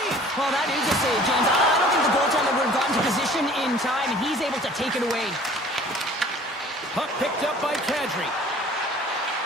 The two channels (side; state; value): both; normal; correlation 0.50